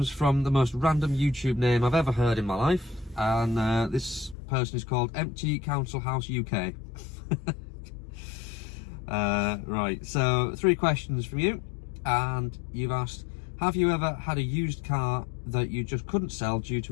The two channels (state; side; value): drops out; right; at 4.4 s